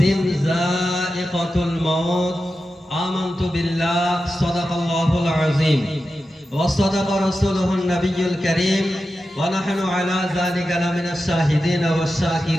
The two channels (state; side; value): normal; both; correlation 0.91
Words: ذائقة الموت. آمنت بالله. صدق الله العظيم وصدق رسوله النبي الكريم ونحن على ذلك لمن الشاهدين